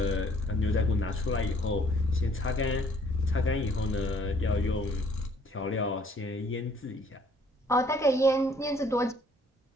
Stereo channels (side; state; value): both; normal; correlation 0.61